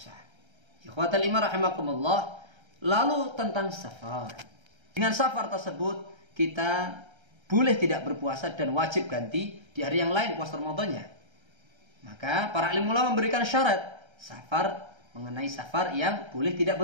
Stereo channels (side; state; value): left; late; 1.3 ms